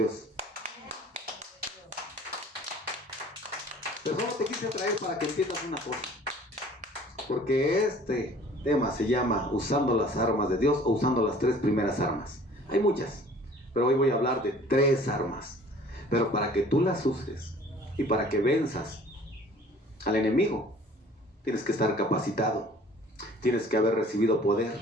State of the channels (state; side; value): normal; both; correlation 0.50